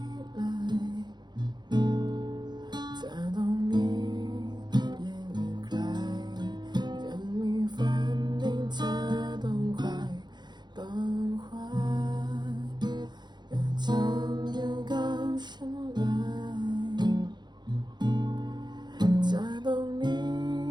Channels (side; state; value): left; late; 0.21 ms